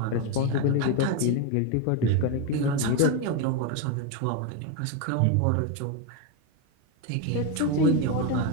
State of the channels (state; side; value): different; both; correlation 0.02